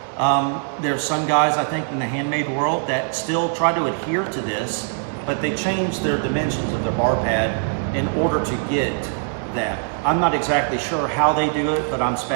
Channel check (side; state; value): left; silent; 64 dB below the other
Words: There's some guys, I think, in the handmade world that still try to adhere to this, but they change their dimensions of their bar pad in order to get that. I'm not exactly sure how they do it, but I'm